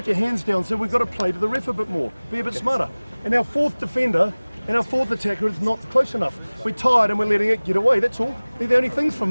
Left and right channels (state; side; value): inverted; both; correlation -1.00